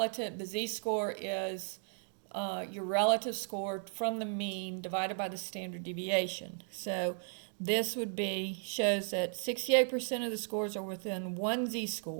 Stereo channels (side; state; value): left; silent; 54 dB below the other